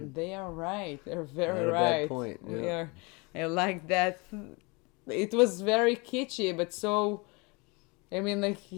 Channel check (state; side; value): quieter; right; 28.4 dB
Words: they are right. They're very right. Point. Yeah. We are. I like that. It was very kitschy, but so. I mean, like,